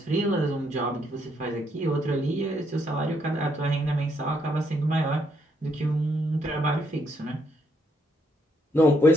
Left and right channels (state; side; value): normal; both; correlation 0.73